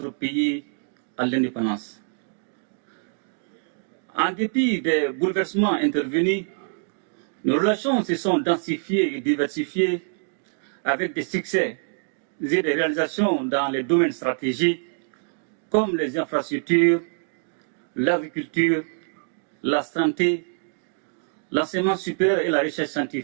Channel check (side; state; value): left; silent; digital silence